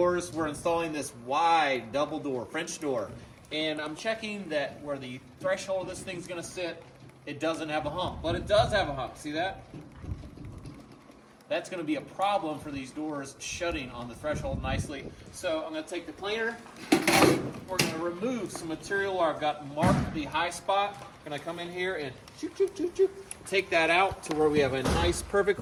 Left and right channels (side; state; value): both; identical; correlation 1.00